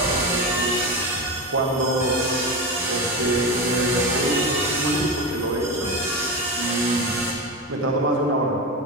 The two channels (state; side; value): normal; both; correlation 0.20